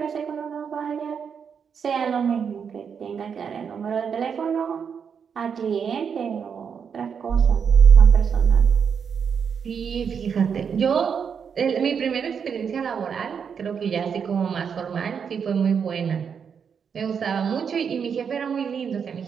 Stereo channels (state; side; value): quieter; left; 6.9 dB